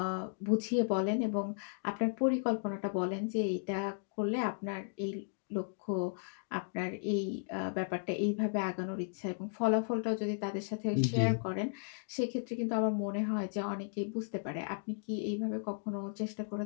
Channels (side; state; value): right; silent; digital silence